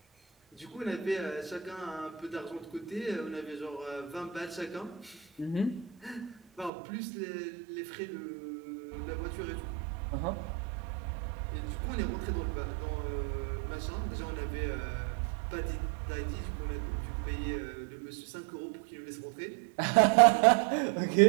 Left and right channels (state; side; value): drops out; left; at 6.7 s